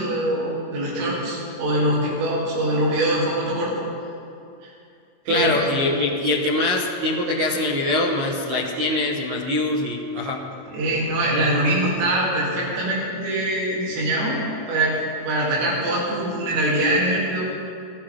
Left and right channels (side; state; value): left; late; 22 ms